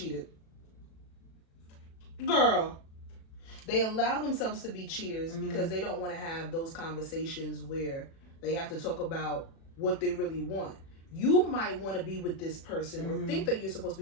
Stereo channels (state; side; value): late; right; 36 ms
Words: Girl. They allow themselves to be cheaters because they don't want to have those conversations where they have to talk about what they really want. You might want to be with this person or think that you're supposed